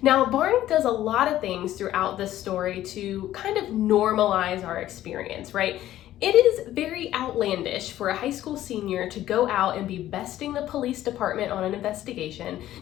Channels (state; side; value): quieter; right; 13.4 dB